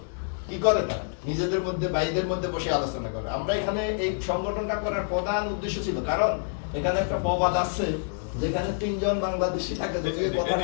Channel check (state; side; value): silent; right; digital silence